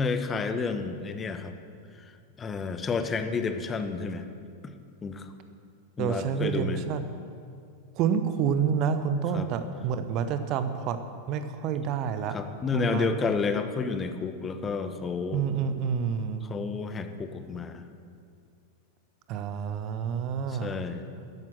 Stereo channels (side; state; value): both; normal; correlation 0.31